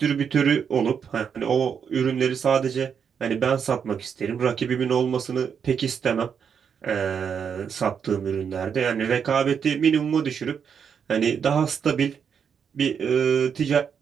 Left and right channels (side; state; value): left; quieter; 7.1 dB